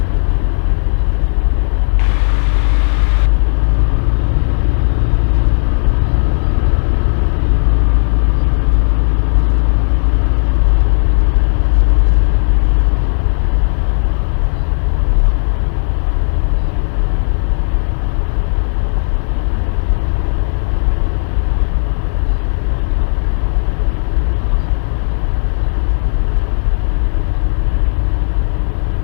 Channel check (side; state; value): right; silent; digital silence